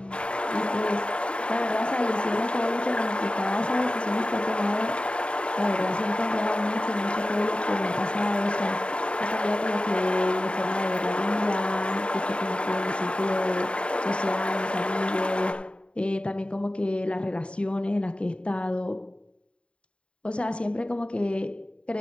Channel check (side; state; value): right; late; 0.057 ms